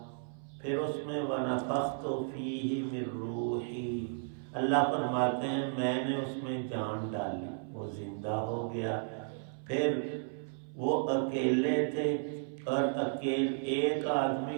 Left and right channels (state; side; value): silent; left; 55 dB below the other